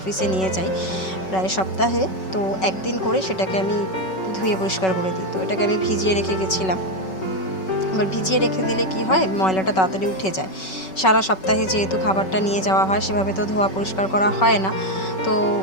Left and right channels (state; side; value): late; right; 5.3 ms